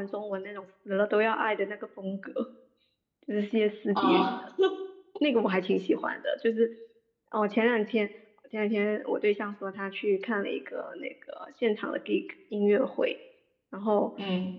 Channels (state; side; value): identical; both; correlation 1.00